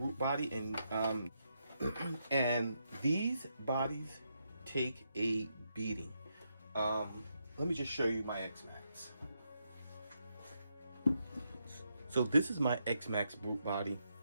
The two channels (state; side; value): inverted; both; correlation -0.81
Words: body, and and these bodies take a beating. Let me just show you my Xmaxx. So this is my Xmaxx Brute body,